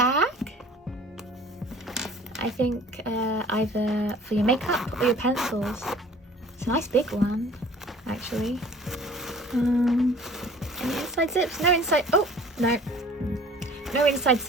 I think either for your makeup or your pencils. It's a nice big one, actually. Any inside zips? No inside. Oh, no. No inside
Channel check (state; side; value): normal; both; correlation 0.48